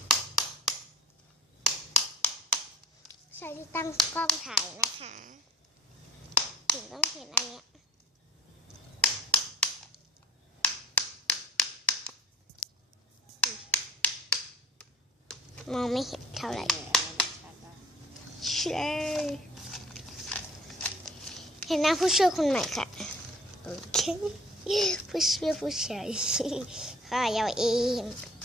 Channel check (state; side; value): normal; both; correlation 0.47